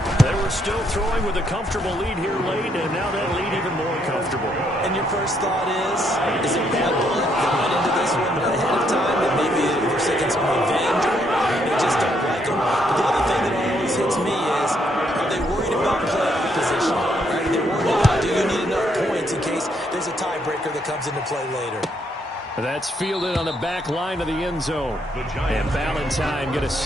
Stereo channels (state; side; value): normal; both; correlation 0.73